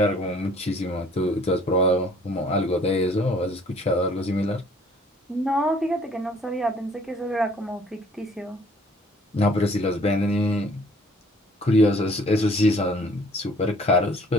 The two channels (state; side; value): normal; both; correlation 0.56